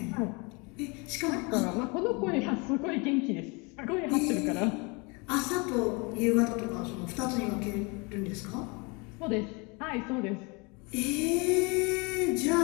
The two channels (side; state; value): right; quieter; 29.4 dB